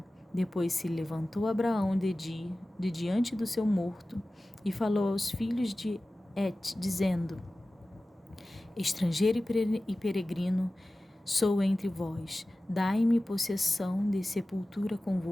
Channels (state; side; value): normal; both; correlation 0.96